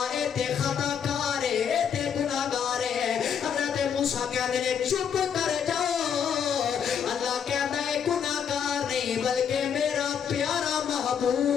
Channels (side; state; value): right; quieter; 7.7 dB